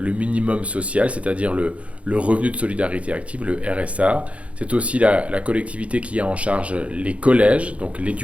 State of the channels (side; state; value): left; late; 0.063 ms